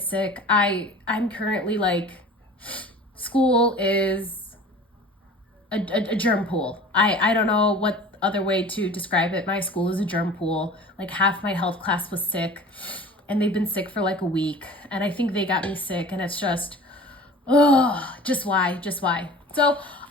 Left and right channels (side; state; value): both; normal; correlation 0.41